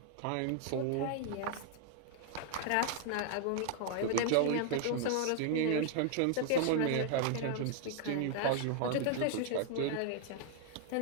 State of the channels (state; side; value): different; both; correlation -0.01